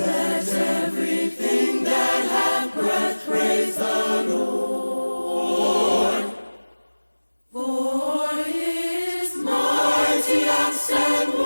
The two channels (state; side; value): inverted; both; correlation -1.00